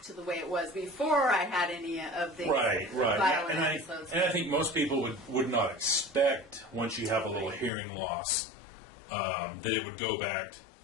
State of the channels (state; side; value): drops out; right; at 7.7 s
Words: to the way it was before I had any of the Right. violent And episodes. I think most people would not expect, once you have a little hearing loss, that it would go back